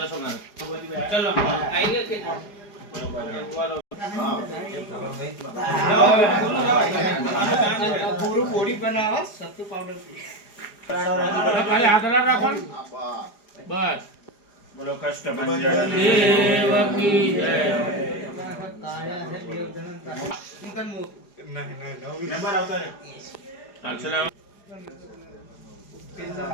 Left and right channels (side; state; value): right; late; 4.9 ms